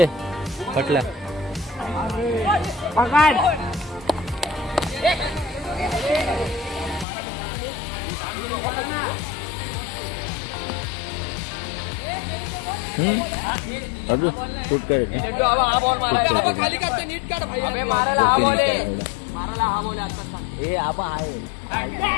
पटल्या. अभी शूट करेल.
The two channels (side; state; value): right; drops out; at 7.1 s